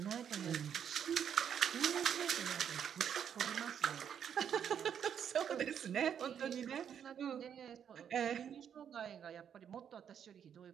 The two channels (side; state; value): left; quieter; 8.4 dB